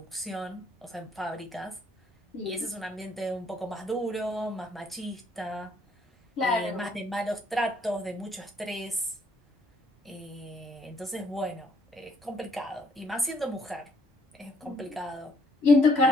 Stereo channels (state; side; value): normal; both; correlation 0.67